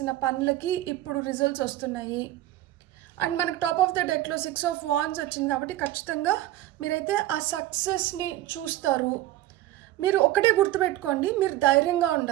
పనులకి ఇప్పుడు రిజల్ట్స్ వస్తున్నాయి. అండ్ మనకు టాప్ ఆఫ్ ద డెక్లో 6 ఆఫ్ వాండ్స్ వచ్చింది కాబట్టి ఖచ్చితంగా మీరైతే ఆ సక్సెస్ని చూస్తారు. మీరు ఒకటే గుర్తుపెట్టుకోండి, మీరు ధైర్యంగా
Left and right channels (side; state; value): left; quieter; 15.0 dB